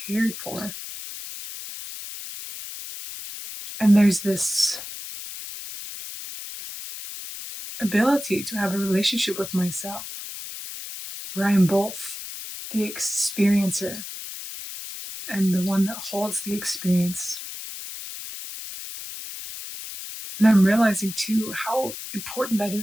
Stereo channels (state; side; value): noise; left; hiss, 10 dB below the sound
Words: for. And there's this ability to have a relationship with myself, where I am both the experiencer and the one that holds the experience. And I'm realizing too how important that